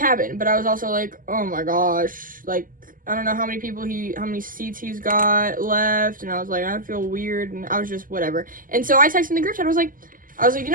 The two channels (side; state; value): left; late; 0.40 ms